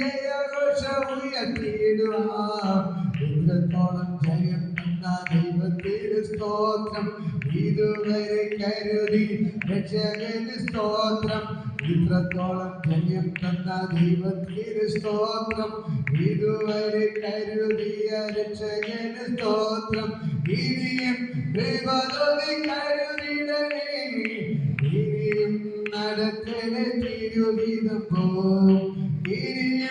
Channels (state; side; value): identical; both; correlation 1.00